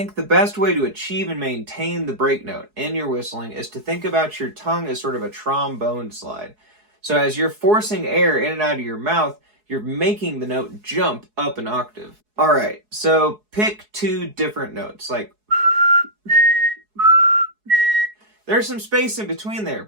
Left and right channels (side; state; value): left; late; 4.7 ms